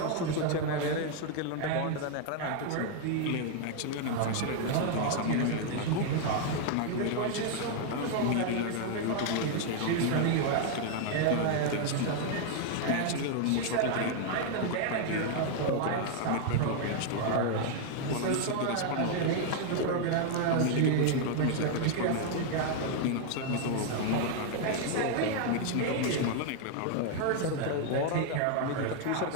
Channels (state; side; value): different; both; correlation 0.00